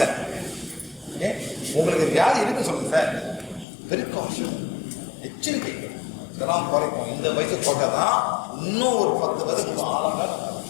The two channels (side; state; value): right; drops out; at 3.7 s